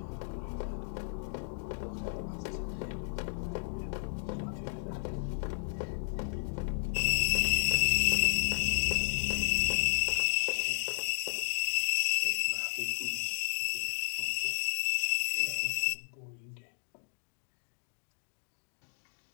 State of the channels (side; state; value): right; silent; digital silence